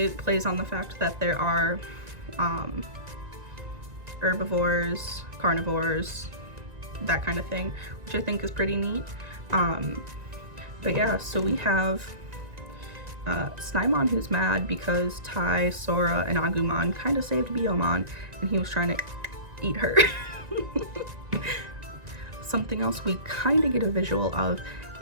plays on the fact that there are herbivores, carnivores, that kind of thing, which I think is pretty neat. But yeah, so we have Snymon, who's mad because Tai, Sora, and Agumon kind of saved Biomon, and he was trying to eat her. Something else we kind of get a visual of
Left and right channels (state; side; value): late; left; 1.9 ms